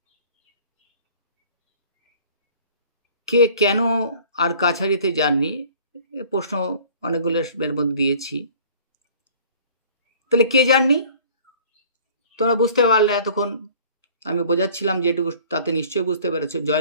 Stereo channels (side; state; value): both; inverted; correlation -0.49